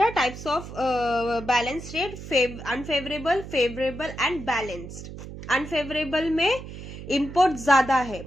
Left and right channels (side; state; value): right; noise; hum, 12 dB below the sound